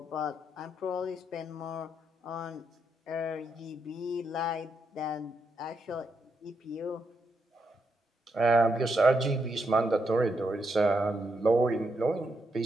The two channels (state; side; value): normal; both; correlation 0.81